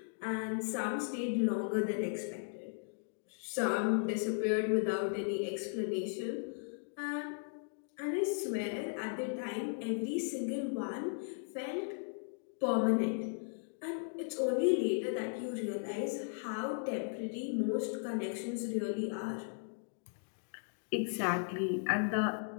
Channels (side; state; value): right; silent; digital silence